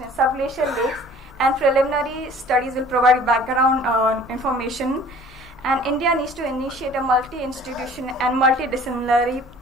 in subglacial lakes, and preliminary studies will provide background information. And India needs to initiate a multi-institution and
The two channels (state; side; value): noise; left; hum, 24 dB below the sound